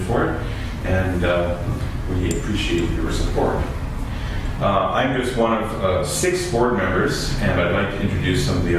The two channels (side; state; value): both; identical; correlation 1.00